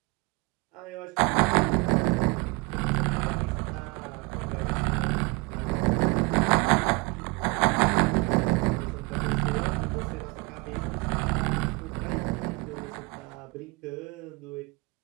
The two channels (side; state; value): left; quieter; 27.1 dB